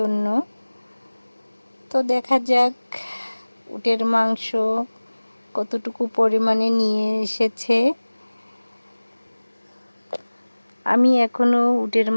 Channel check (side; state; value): both; inverted; correlation -1.00